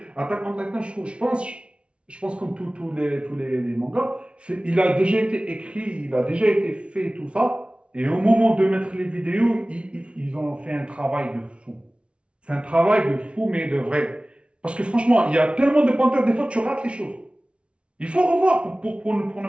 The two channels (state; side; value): late; left; 0.059 ms